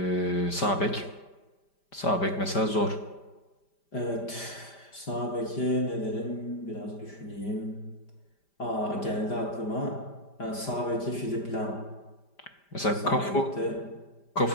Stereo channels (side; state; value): right; late; 5.1 ms